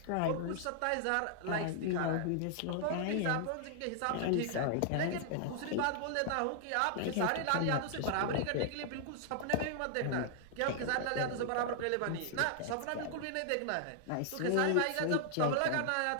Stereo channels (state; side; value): different; both; correlation -0.01